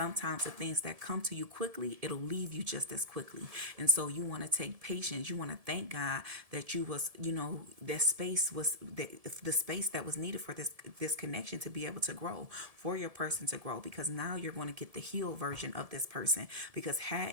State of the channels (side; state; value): left; late; 1.7 ms